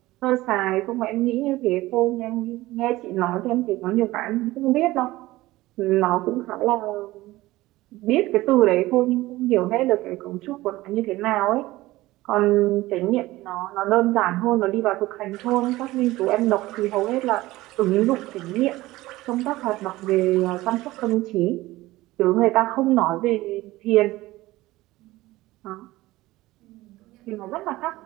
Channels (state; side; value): quieter; left; 18.1 dB